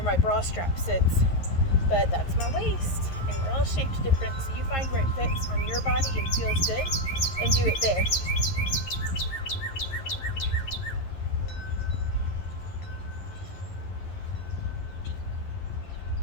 my bra strap sits, but that's my waist, and we're all shaped different, so you find where it fits on your body and feels good and do it there.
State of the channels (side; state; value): right; late; 11 ms